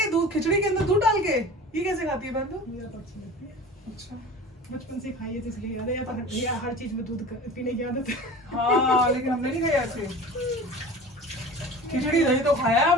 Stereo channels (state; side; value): normal; both; correlation 0.38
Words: दूध खिचड़ी के अंदर दूध डाल के, ये कैसे खाती है बंदू? मुझे तो अच्छी लगती है। अच्छा, बचपन से खाई है तो इसलिए याद है, या हर चीज में दूध पीने की आदत है। हाँ लेकिन हमने नहीं खाया ऐसे। खिचड़ी दही तो खाया